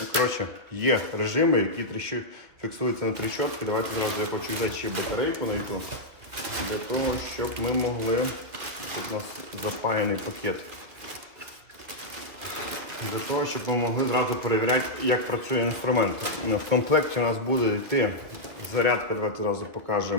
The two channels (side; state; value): left; late; 2.7 ms